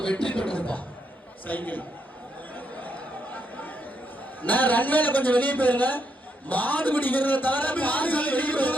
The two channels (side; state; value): both; normal; correlation 0.78